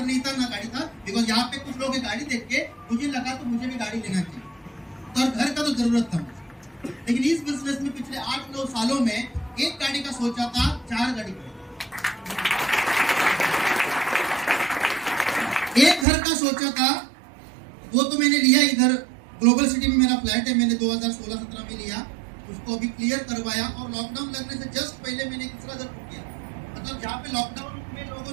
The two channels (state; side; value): drops out; left; at 16.1 s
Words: नहीं था ना गाड़ी था। बिकॉज यहाँ पे कुछ लोग गाड़ी देख के मुझे लगा तो मुझे भी गाड़ी लेना चाहिए, तो घर का तो जरूरत था मुझे। लेकिन इस बिजनेस में पिछले 8-9 सालों में एक गाड़ी का सोचा था, 4 गाड़ी का, एक घर का सोचा था, वो तो मैंने लिया। इधर ग्लोबल सिटी में मेरा फ्लैट है, मैंने 2016-17 में लिया। उसको अभी क्लियर करवाया और लॉकडाउन लगने से जस्ट पहले मैंने दूसरा घर बुक किया। मतलब जहाँ पे लॉकडाउन में लोगों